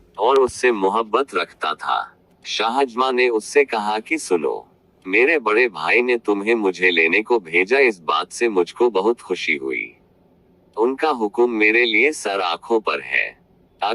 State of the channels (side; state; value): both; identical; correlation 1.00